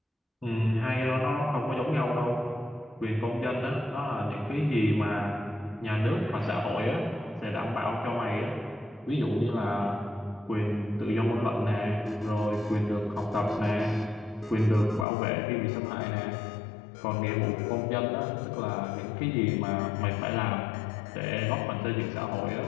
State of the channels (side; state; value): right; drops out; at 15.1 s